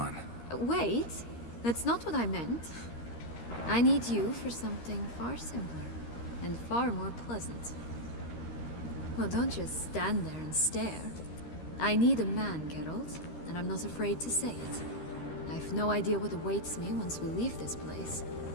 Wait, that's not what I meant. I need you for something far simpler and far more pleasant. Well, don't just stand there and stare. I need a man, Geralt, and I'm not afraid to say it. I've no idea what awaits me once we leave this place.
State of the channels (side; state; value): right; late; 13 ms